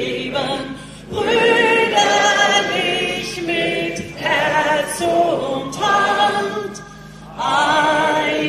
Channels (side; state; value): both; identical; correlation 1.00